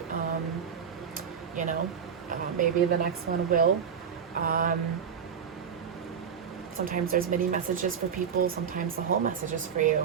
maybe the next one will. Sometimes there's mini messages for people, sometimes the whole message is for you.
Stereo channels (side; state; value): left; quieter; 7.3 dB